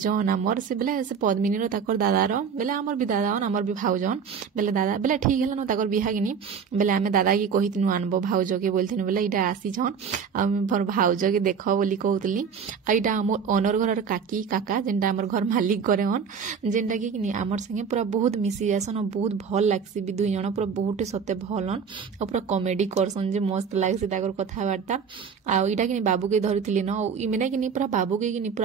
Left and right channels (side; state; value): left; quieter; 6.5 dB